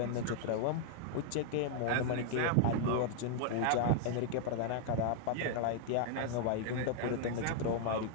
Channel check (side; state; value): both; different; correlation -0.01